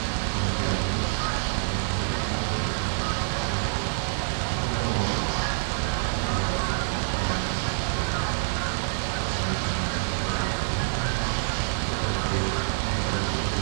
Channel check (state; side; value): silent; left; 60 dB below the other